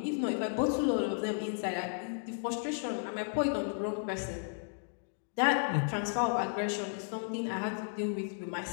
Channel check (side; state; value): right; silent; digital silence